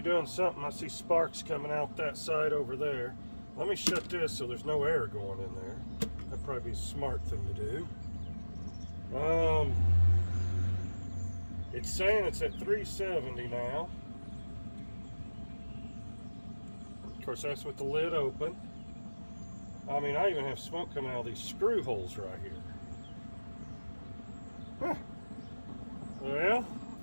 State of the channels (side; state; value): both; inverted; correlation -1.00